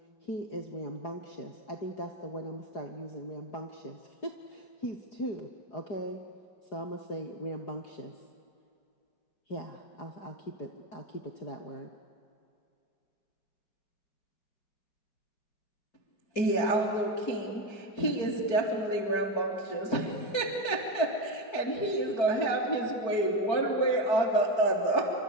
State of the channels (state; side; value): late; right; 4.6 ms